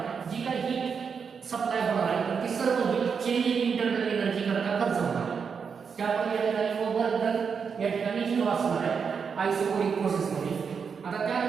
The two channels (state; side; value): quieter; left; 6.1 dB